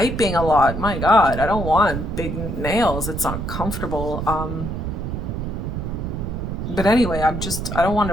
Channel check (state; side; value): noise; right; rumble, 4 dB below the sound